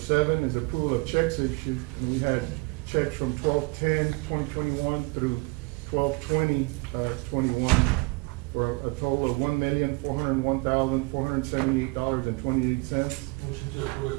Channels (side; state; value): left; quieter; 27.9 dB